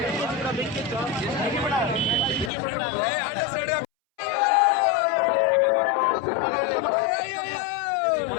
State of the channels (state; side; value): drops out; right; at 2.5 s